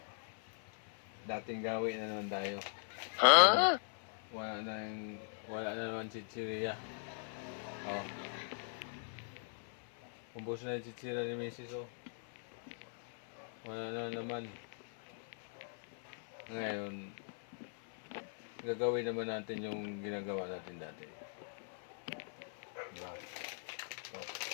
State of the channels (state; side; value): silent; right; 51 dB below the other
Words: Dating gawin na naman tayo. Wala na naman chichirya. Oh. Ubos na yung chichirya ni Mrs. Oh. Wala na naman. Ngayon, gagawin naman natin yung ginagawa natin dati. Diba? Ito.